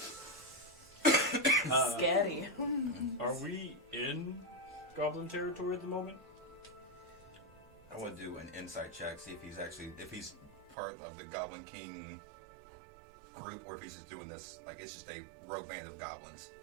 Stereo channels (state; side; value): drops out; left; at 10.8 s